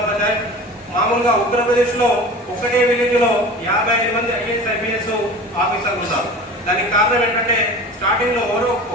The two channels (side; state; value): both; normal; correlation 0.37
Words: అవుతాయి. మామూలుగా ఉత్తరప్రదేశ్లో ఒకటే విలేజ్లో 55 మంది ఐఏఎస్ ఐపీఎస్ ఆఫీసర్లు ఉన్నారు. దానికి కారణం ఏంటంటే స్టార్టింగ్లో